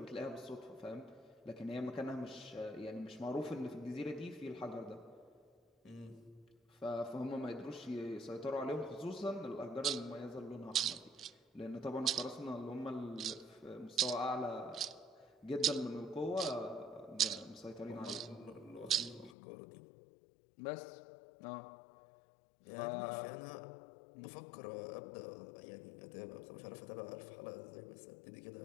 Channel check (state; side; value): drops out; right; at 19.4 s